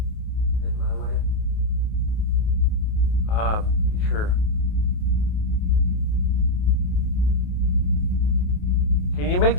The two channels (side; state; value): right; late; 28 ms